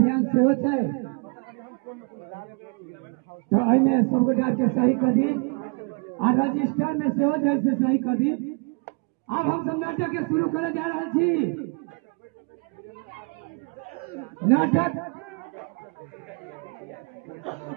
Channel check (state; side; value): quieter; left; 33.6 dB